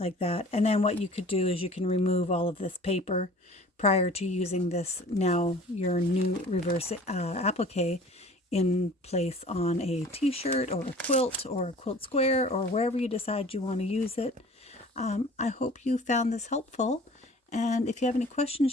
that. And then what you could do is you can remove all of this paper prior to using this, now your new reverse applique, in place on a t-shirt or a quilt square, or wherever you decide you want to use it. I hope you found this helpful, and if you have any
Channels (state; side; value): normal; both; correlation 0.46